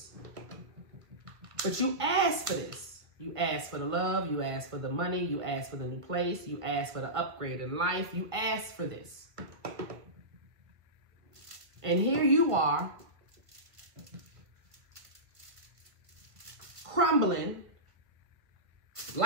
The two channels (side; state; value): left; late; 1.5 ms